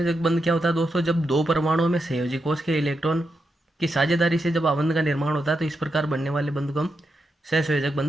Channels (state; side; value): normal; both; correlation 0.85